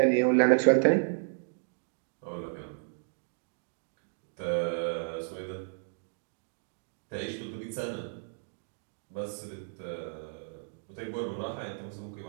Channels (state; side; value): silent; left; digital silence